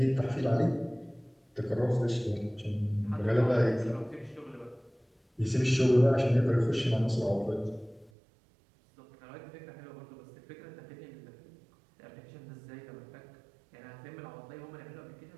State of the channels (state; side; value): drops out; left; at 8.1 s